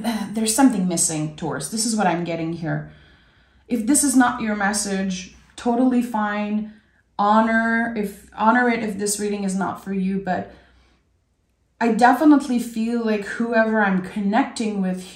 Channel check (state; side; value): identical; both; correlation 1.00